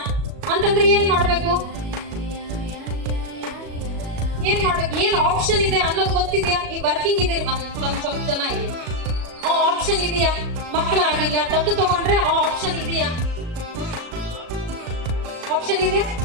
ಅಂತಂದ್ರೆ ಏನ್ ಮಾಡ್ಬೇಕು, ಏನ್ ಆಪ್ಷನ್ ಇದೆ ಅನ್ನೋದು ಗೊತ್ತಿದ್ಯಾ? ಈ ವರ್ಕಿಂಗ್ ಇದೆ ನಮ್ ಸ್ವಲ್ಪ ಜನ ಇಲ್ಲಿ, ಆ ಆಪ್ಷನ್ ಇದೆಯಾ? ಮಕ್ಕಳಾಗಿಲ್ಲ ದತ್ತು ತಗೊಂಡ್ರೆ ಆ ಆಪ್ಷನ್ ಇದೆಯಾ? ಆಪ್ಷನ್ ಇದೆಯಾ?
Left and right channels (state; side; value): late; left; 37 ms